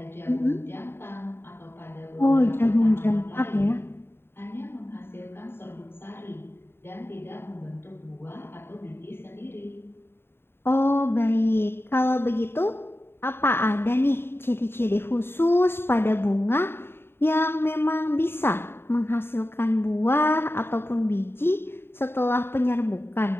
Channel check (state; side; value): late; right; 0.11 ms